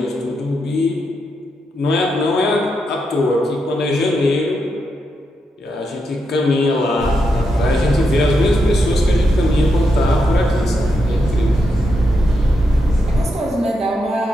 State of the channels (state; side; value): normal; both; correlation 0.83